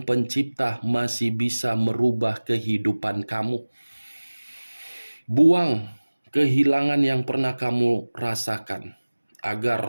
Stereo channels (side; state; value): both; inverted; correlation -1.00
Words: Pencipta masih bisa merubah kehidupan kamu. Buang kehilangan yang pernah kamu rasakan